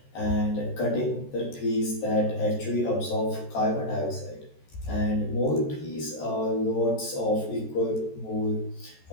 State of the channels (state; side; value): late; right; 14 ms